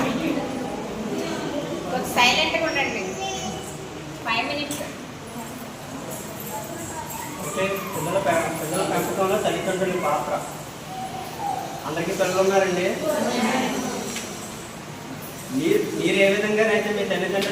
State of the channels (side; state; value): both; identical; correlation 1.00